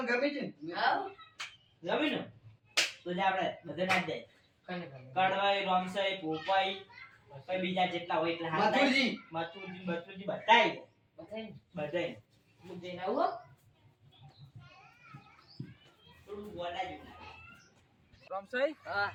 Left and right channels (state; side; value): identical; both; correlation 1.00